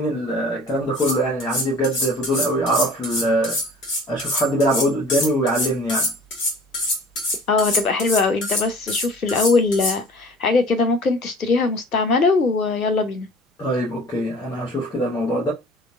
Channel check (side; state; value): both; normal; correlation 0.46